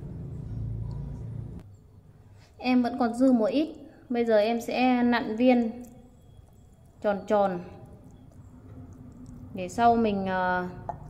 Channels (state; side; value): identical; both; correlation 1.00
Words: Em vẫn còn dư một ít. Bây giờ em sẽ nặn viên tròn tròn để sau mình